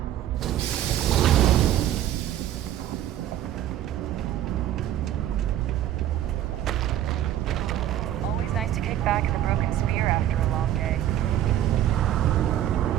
Always nice to kick back in the broken spear after a long day.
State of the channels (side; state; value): left; quieter; 12.0 dB